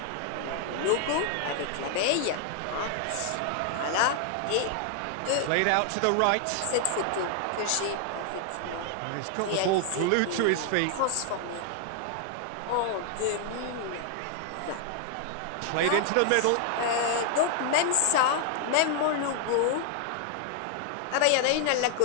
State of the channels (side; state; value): both; different; correlation 0.00